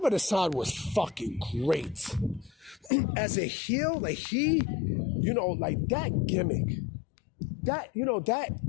Hassan was fucking great. As a heel, like like that gimmick. That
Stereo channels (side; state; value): right; drops out; at 2.9 s